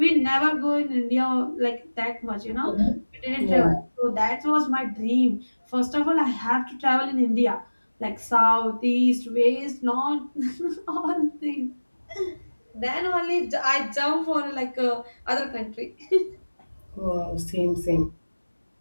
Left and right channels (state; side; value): inverted; both; correlation -1.00